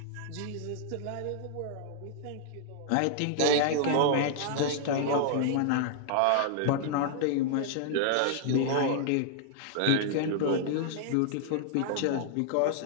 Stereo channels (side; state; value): both; different; correlation -0.01